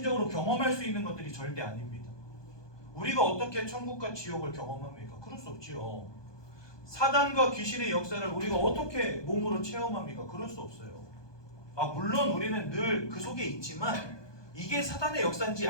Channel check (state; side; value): late; right; 1.2 ms